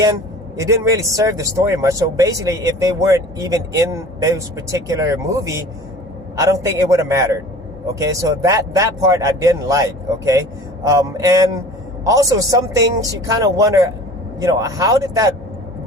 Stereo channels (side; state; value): both; normal; correlation 0.43